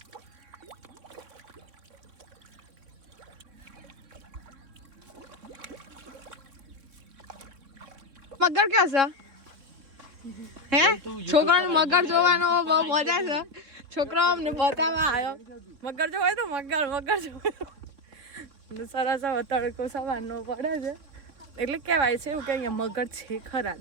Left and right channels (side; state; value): left; late; 3.6 ms